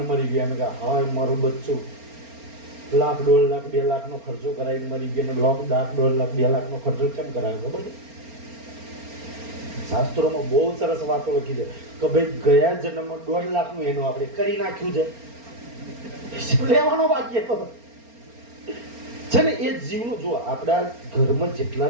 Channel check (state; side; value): late; left; 4.3 ms